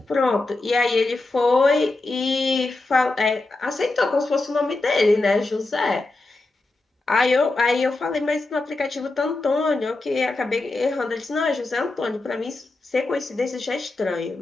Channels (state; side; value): quieter; right; 3.1 dB